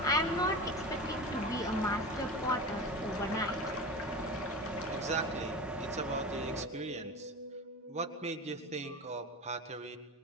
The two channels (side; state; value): both; normal; correlation 0.29